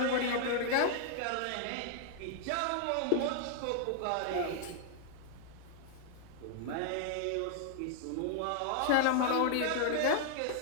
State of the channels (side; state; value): both; different; correlation -0.01